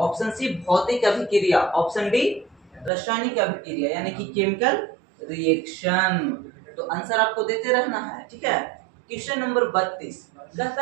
सी भौतिक अभिक्रिया, ऑप्शन डी रासायनिक अभिक्रिया यानी कि केमिकल रिएक्शन। तो आंसर आपको देते रहना है, ठीक है। क्वेश्चन नंबर 32 कहता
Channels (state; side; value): drops out; left; at 2.9 s